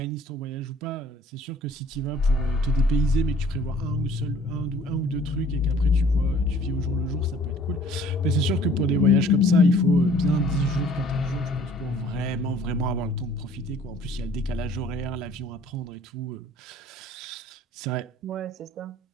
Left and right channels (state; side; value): normal; both; correlation 0.54